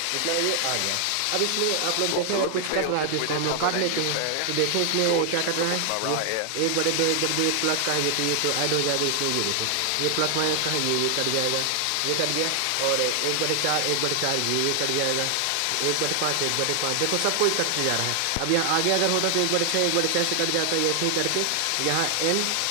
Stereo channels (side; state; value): both; different; correlation 0.00